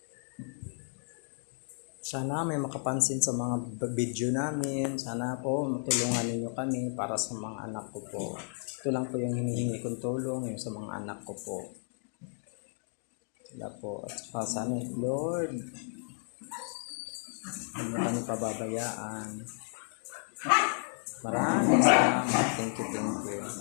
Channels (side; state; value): right; silent; 56 dB below the other